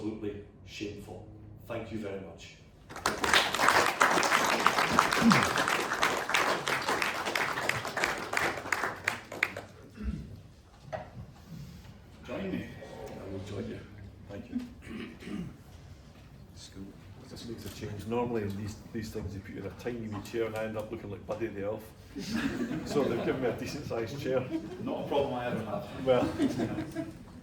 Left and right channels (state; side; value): identical; both; correlation 1.00